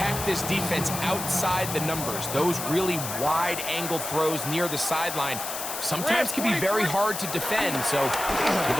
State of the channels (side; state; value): left; noise; hiss, 6 dB below the sound